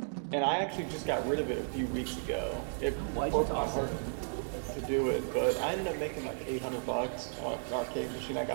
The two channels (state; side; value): silent; left; digital silence